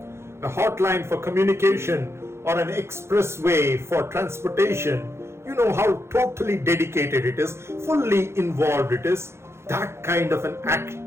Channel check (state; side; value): late; left; 0.13 ms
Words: A hotline for communication or an expressway for transportation. You know how totally dedicated it is, fully involved it is. That kind of an